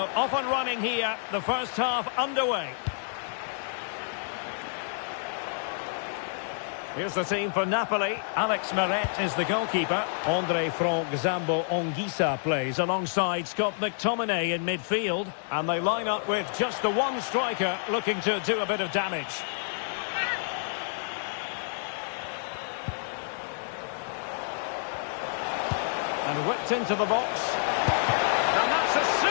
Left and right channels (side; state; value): right; silent; digital silence